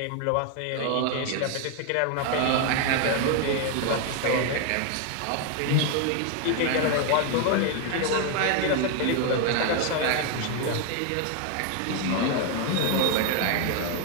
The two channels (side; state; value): both; different; correlation 0.01